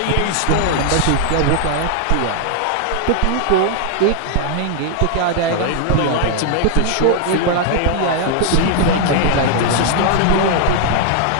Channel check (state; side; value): different; both; correlation 0.00